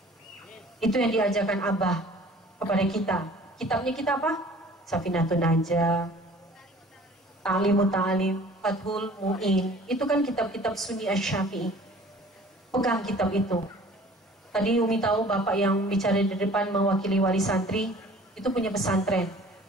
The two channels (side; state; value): both; normal; correlation 0.49